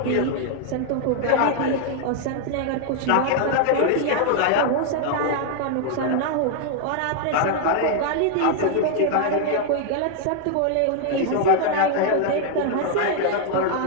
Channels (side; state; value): both; different; correlation 0.00